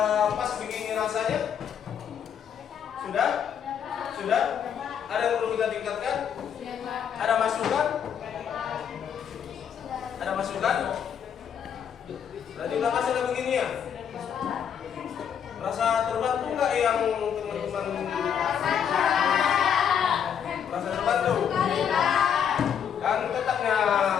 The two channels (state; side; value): quieter; right; 8.2 dB